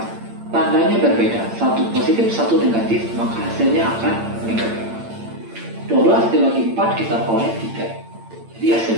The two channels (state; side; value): late; left; 8.8 ms